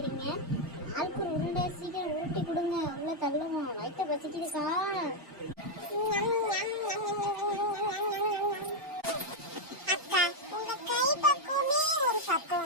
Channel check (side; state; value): both; normal; correlation 0.00